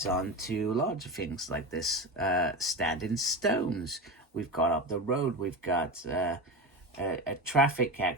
on to larger things like this standing stones. We've got up the road, we've got a traffic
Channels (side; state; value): both; normal; correlation 0.22